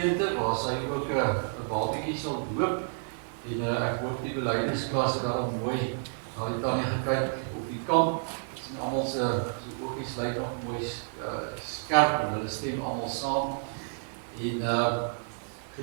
waar sy ook 'n babatjie sal doop. En ek hoop die belydensklas het daarom mooi daai tannie gekyk op die kamp. En almal se oogies lyk nog mooi skerp en hulle stem almal saam. En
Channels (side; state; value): left; silent; digital silence